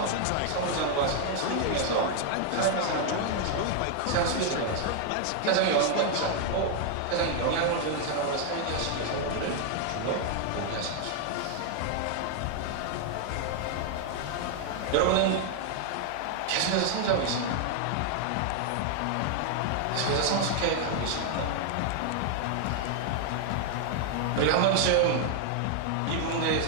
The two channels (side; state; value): both; different; correlation 0.00